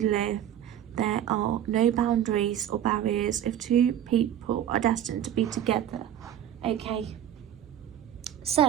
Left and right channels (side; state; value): left; quieter; 10.7 dB